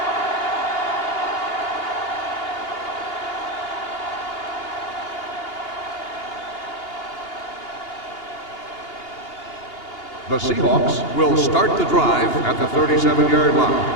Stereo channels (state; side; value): late; right; 2.8 ms